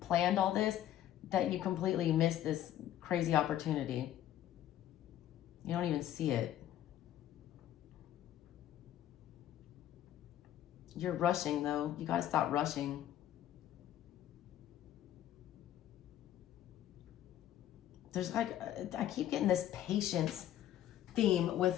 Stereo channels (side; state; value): right; quieter; 11.9 dB